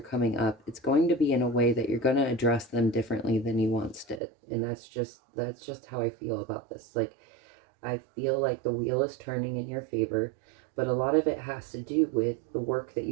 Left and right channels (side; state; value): left; drops out; at 4.2 s